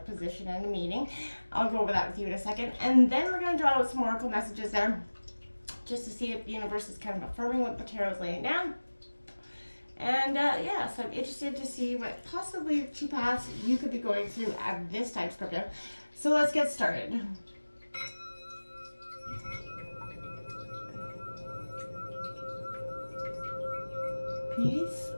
position and a meaning. I'll go over that with you in a second. And then we're going to draw out some oracle messages there just to see if the universe is kind of affirming what the tarot is laying down. And so I'm interested to see what possibly two paths you could be going through at this time, Scorpio. So let's get started. Peace,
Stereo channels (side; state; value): both; inverted; correlation -1.00